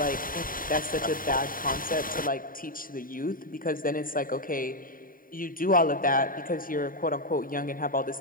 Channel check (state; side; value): late; right; 0.41 ms